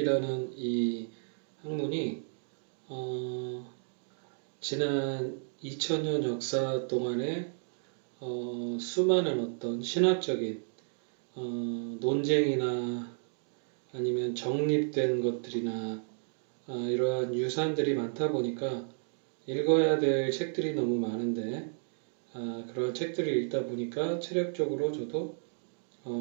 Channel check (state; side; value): silent; left; digital silence